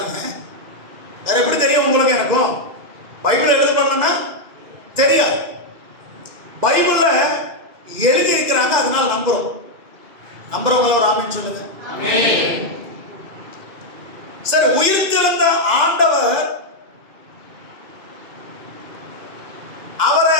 வேற எப்படி தெரியும் உங்களுக்கு? எனக்கும் பைபிள் எழுதப்படலன்னா தெரியாது. பைபிள்ல எழுதி இருக்கிறாங்க, அதனால நம்புறோம். நம்புறவங்கள ஒரு ஆமென் சொல்லுங்க. சரி, உயிர்த்தெழுந்த ஆண்டவர்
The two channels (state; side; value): late; left; 2.0 ms